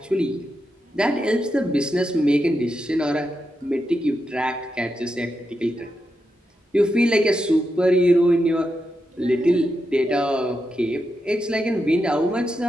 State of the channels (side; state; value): both; normal; correlation 0.86